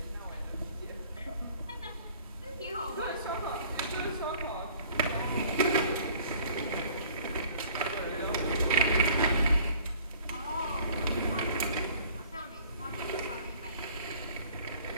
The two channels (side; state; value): both; inverted; correlation -0.52